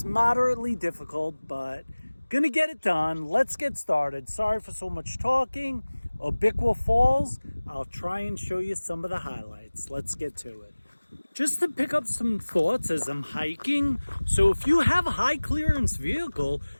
moderately difficult, but gonna get it done. Let's get started. Sorry for so much talking. Abiqua Falls, I'll try and show you some of the highlights. Let's get to it. Just to pick up some thoughts as I'm hiking. So if you have a high clearance vehicle,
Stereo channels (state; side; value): inverted; both; correlation -1.00